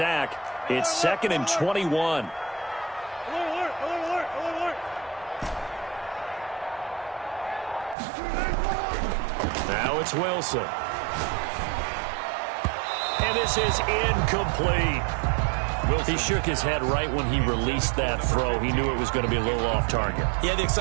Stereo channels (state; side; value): drops out; left; at 8.0 s